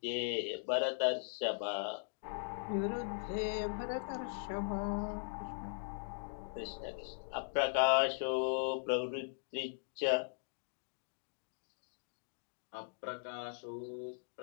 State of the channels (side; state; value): right; silent; digital silence